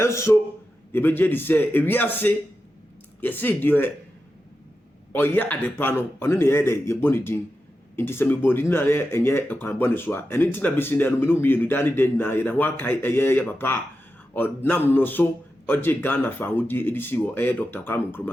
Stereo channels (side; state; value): both; normal; correlation 0.90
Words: so ye be je di say ewiase ye say de oye adepa no ono ne ye de ye boni din nti se me bodi na ye enye ekwan boni so a eni nti na besi na no me no mienu dani den na ye na ho akai ye papa o nam no so oje Ghana fa hodi edisi wo Dr. Kwame